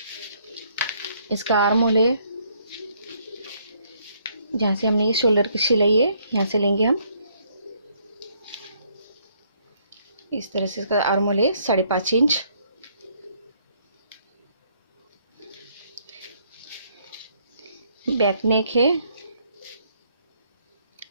इसका आर्म होल है, जहाँ से हमने ये शोल्डर की सिलाई है, यहाँ से लेंगे हम। इस तरह से इसका आर्म होल है 5.5 इंच। बैक नेक है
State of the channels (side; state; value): both; inverted; correlation -0.68